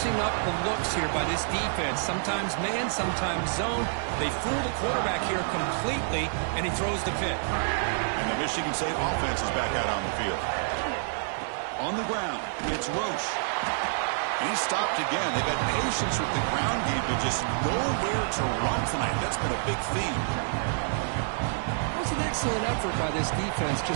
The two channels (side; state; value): left; silent; digital silence